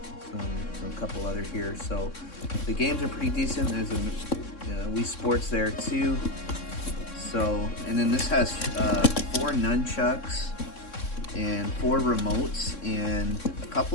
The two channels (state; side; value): late; right; 3.6 ms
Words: so a couple other here. So the games are pretty decent. There's a Wii Sports there too. So, and then this has 4 nunchucks and 4 remotes, and a